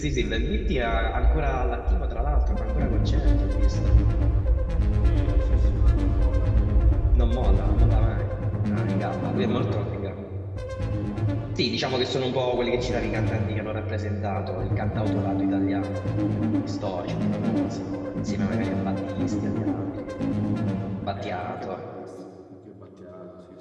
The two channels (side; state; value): both; identical; correlation 1.00